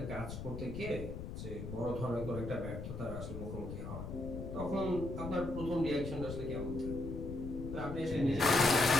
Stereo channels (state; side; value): noise; left; rumble, 7 dB below the sound